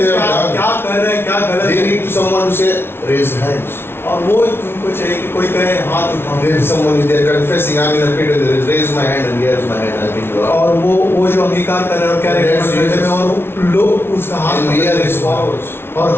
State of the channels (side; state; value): right; late; 0.12 ms